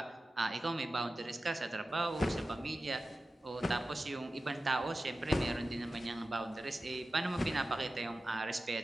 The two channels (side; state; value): both; normal; correlation 0.94